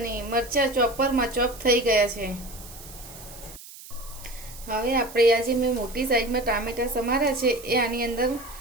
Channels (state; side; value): noise; right; hiss, 17 dB below the sound